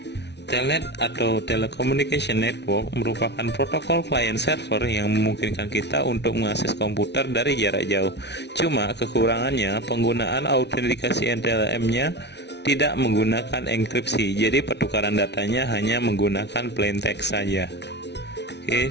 Telnet atau Telecommunication Network merupakan protokol client server yang memungkinkan kita untuk mengakses komputer dari jarak jauh. Cuma kekurangannya penggunaan autentikasi NTLM-nya tidak menggunakan enkripsi, jadi pertukaran datanya hanya menggunakan plain text saja. Oke,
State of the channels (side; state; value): right; late; 0.50 ms